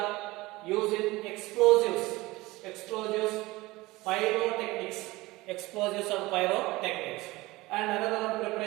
use in explosives, pyrotechnics, and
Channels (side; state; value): left; quieter; 20.6 dB